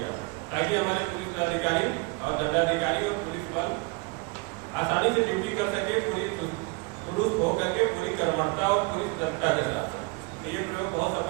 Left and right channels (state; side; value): quieter; left; 29.0 dB